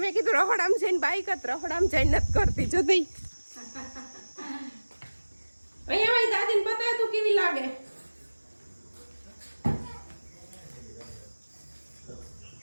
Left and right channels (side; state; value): both; inverted; correlation -1.00